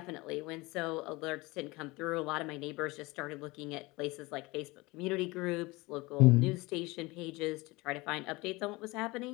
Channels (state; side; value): quieter; right; 22.9 dB